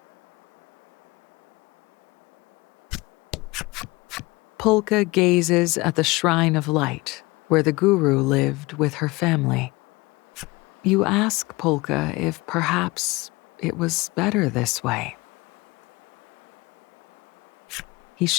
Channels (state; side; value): quieter; right; 23.0 dB